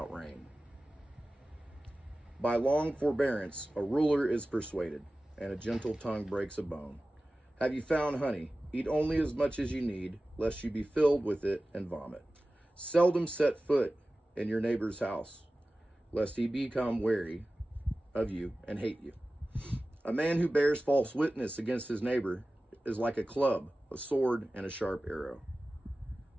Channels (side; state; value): both; normal; correlation 0.96